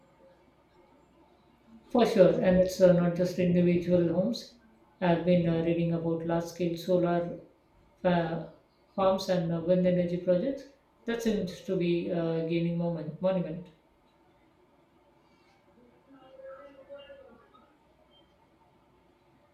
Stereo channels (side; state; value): both; identical; correlation 1.00